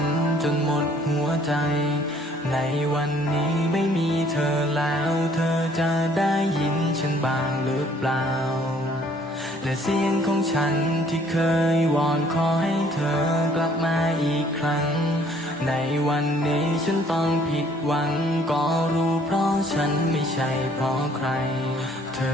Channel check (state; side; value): normal; both; correlation 0.60